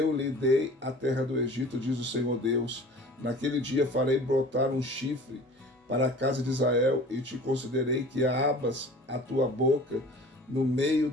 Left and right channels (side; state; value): both; normal; correlation 0.44